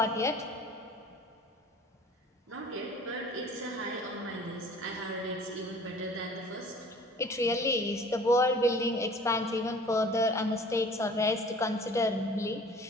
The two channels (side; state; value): both; normal; correlation 0.48